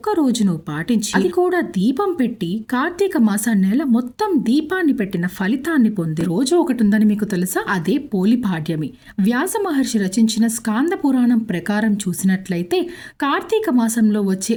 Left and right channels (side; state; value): both; identical; correlation 1.00